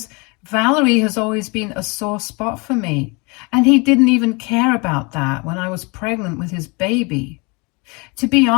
Valerie has always been a sore spot for me. And he didn't even care about that when I was pregnant with his baby. To be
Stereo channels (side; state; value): right; quieter; 29.2 dB